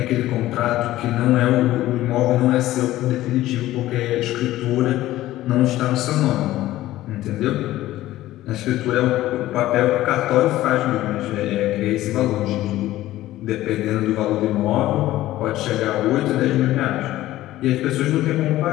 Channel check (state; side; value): quieter; right; 15.3 dB